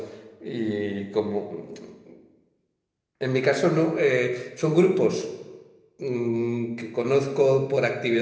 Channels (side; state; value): both; identical; correlation 1.00